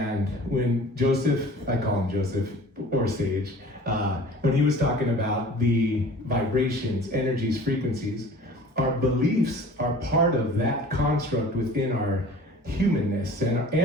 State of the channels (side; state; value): both; normal; correlation 0.45